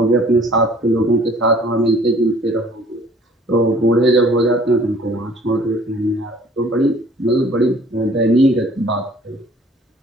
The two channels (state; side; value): normal; both; correlation 0.55